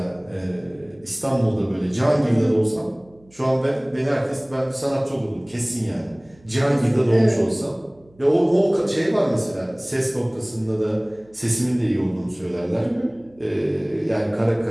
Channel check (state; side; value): noise; right; hum, 29 dB below the sound